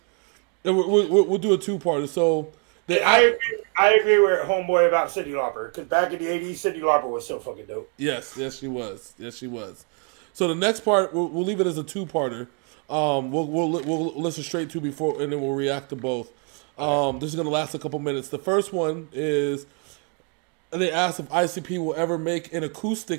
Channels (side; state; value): left; quieter; 36.7 dB